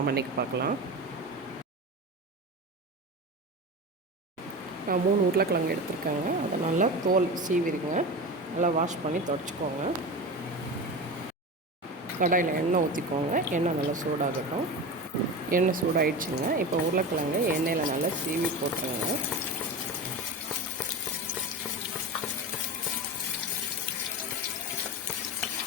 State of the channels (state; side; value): normal; both; correlation 0.26